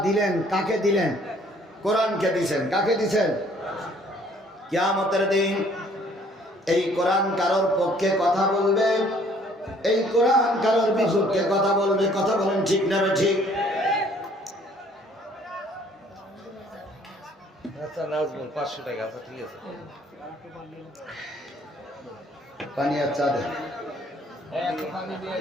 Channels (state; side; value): normal; both; correlation 0.59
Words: দিলেন কাকে দিলেন? কোরআনকে দিছেন। কাকে দিছেন? কিয়ামতের দিন এই কোরআন কারোর পক্ষে কথা বলবে, এই কোরআন কারোর বিপক্ষে কথা বলবে। কথা বলেন ঠিক না ঠিক? আচ্ছা নাজমুল 500 টাকা। আচ্ছা ঠিক আছে, পানি আর চা দেন।